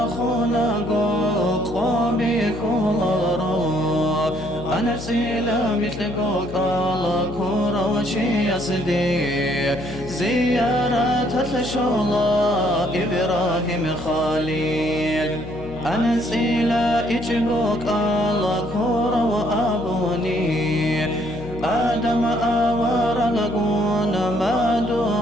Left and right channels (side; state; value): left; noise; hum, 11 dB below the sound